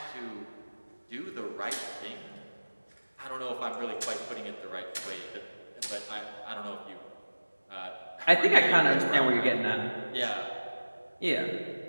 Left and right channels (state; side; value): inverted; both; correlation -1.00